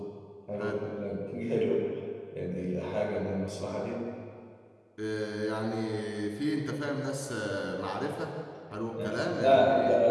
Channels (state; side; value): identical; both; correlation 1.00